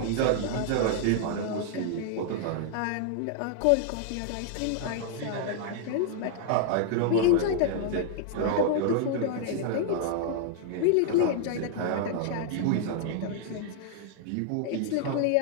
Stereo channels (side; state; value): both; different; correlation -0.01